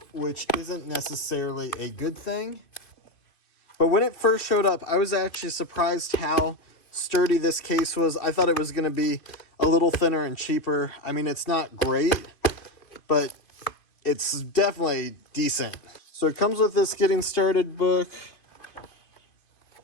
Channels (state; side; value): late; right; 2.5 ms